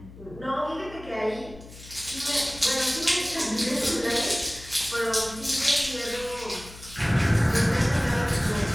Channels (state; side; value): noise; left; hum, 18 dB below the sound